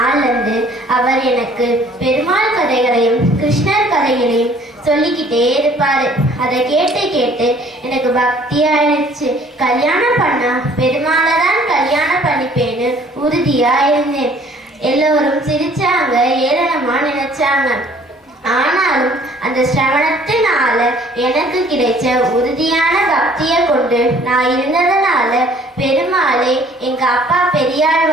இருந்து அவர் எனக்கு பெருமாள் கதைகளையும் கிருஷ்ணர் கதைகளையும் சொல்லிக்கிட்டே இருப்பாரு. அதை கேட்டு கேட்டு எனக்கு பக்தி ஆயிடுச்சு. கல்யாணம் பண்ணா பெருமாளை தான் கல்யாணம் பண்ணிப்பேன்னு உறுதியா இருந்தேன். எல்லோரும் சிரிச்சாங்க, ஏளனமா நினைச்சாங்க. ஆனாலும் அந்த சிரவணத்தினால எனக்கு கிடைச்ச உறுதியான பக்தியை கொண்டு நான் இருந்ததுனால பெருமாளே எங்க அப்பா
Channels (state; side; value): normal; both; correlation 0.56